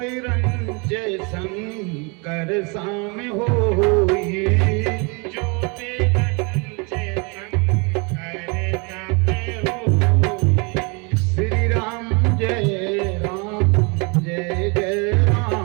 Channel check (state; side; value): quieter; left; 31.5 dB